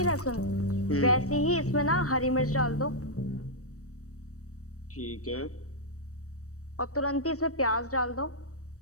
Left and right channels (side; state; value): right; late; 0.65 ms